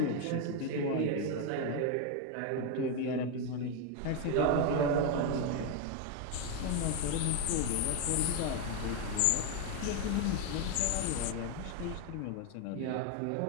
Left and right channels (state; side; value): different; both; correlation 0.01